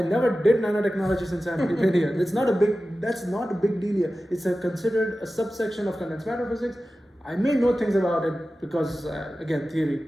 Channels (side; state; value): both; normal; correlation 0.95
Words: never did nanotechnology since I'm in India. That's not a big deal here. It's considered a subsection of condensed matter physics. I may know things about it because, again, theory.